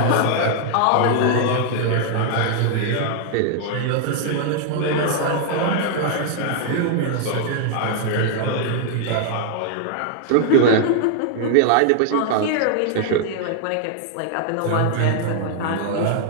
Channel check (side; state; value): both; different; correlation -0.01